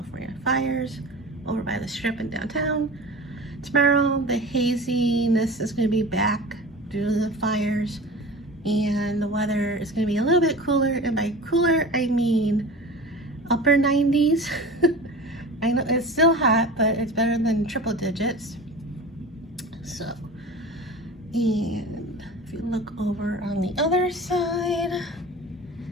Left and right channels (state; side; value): normal; both; correlation 0.35